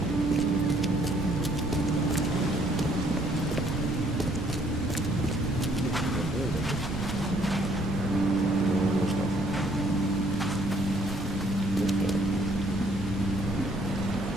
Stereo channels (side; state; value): both; normal; correlation 0.65